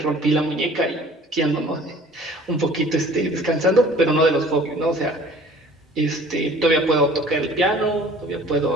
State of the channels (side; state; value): both; normal; correlation 0.50